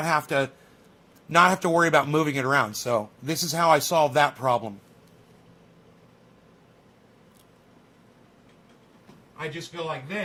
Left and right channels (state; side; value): identical; both; correlation 1.00